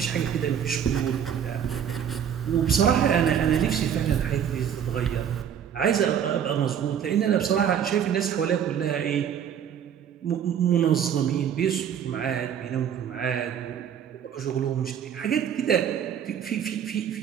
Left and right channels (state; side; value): quieter; left; 8.7 dB